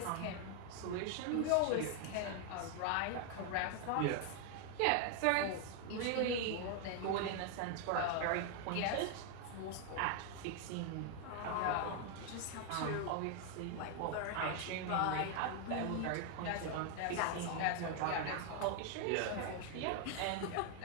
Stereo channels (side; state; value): both; different; correlation 0.00